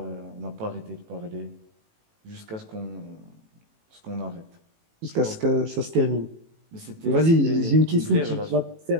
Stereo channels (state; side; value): late; left; 18 ms